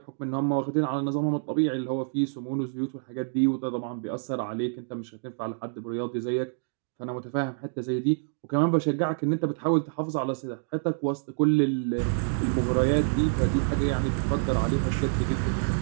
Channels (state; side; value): silent; left; digital silence